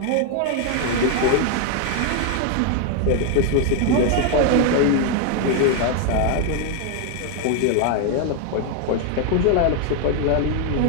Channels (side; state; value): both; different; correlation 0.01